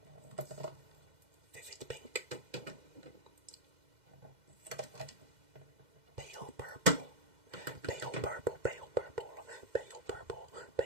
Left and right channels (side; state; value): left; late; 2.0 ms